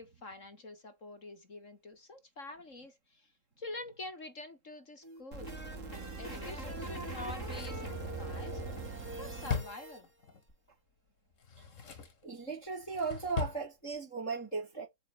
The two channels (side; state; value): right; late; 3.7 ms